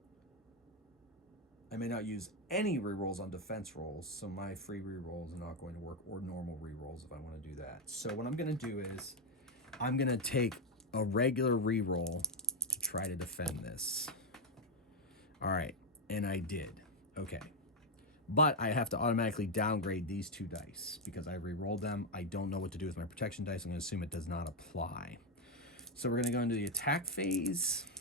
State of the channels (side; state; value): both; normal; correlation 0.04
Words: I may not use any rerolls on defense rolls, so my free rerolls are not going to work, or normal rerolls if I want to do that. So what I'm going to do is I'm going to take a regular reroll to try to defend this. All right, and I did. Okay. But I have to automatically downgrade these 2 dice because I re-rolled them. I don't know what to do with my protection dice. I'm going to assume it does not apply. So we're going to go into the attack phase.